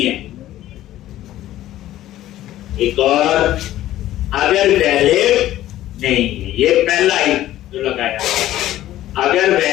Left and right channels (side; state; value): right; quieter; 14.0 dB